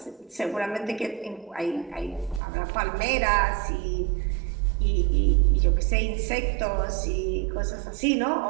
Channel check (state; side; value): drops out; left; at 2.4 s